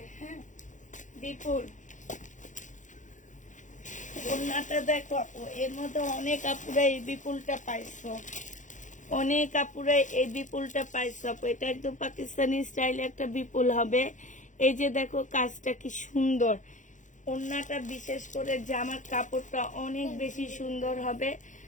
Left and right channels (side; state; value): right; late; 0.36 ms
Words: হ্যাঁ বিপুল ওড়নাটা দেখো আপু, এর মধ্যে অনেক আপুরা এই বিপুলটা পাইছো, অনেক আপুরা এই বিপুলটা পাইছো আপু। এটা একদম পাকিস্তানি স্টাইলে একটা বিপুল হবে। এই যে দেখো কাজটা কি সুন্দর, ওড়নাটা বিশেষ করে জামার কাপড়টা অনেক বেশি সুন্দর হবে।